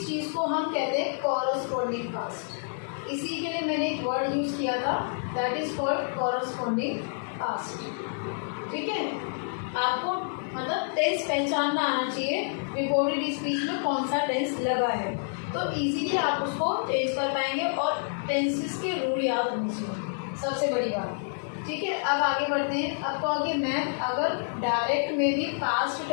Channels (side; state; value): right; silent; 59 dB below the other